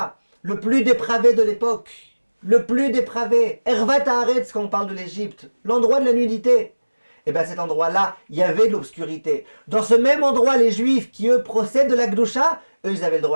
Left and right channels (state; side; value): inverted; both; correlation -1.00